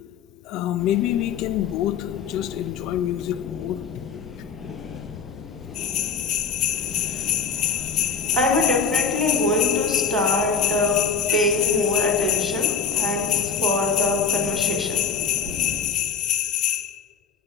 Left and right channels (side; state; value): right; quieter; 5.8 dB